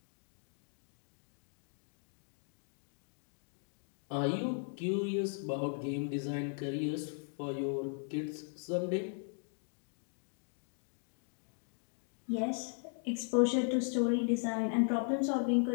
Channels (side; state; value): right; silent; 53 dB below the other